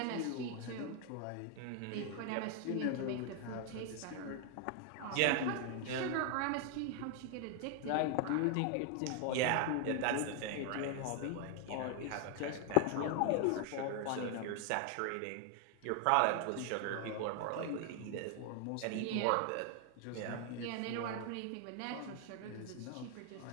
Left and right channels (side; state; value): both; different; correlation 0.00